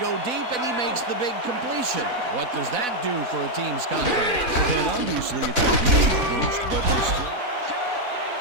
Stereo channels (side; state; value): left; late; 4.0 ms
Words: go deep, and he makes the big completion. What does that do for a team's confidence? Well, then obviously it's a huge boost, but there's still...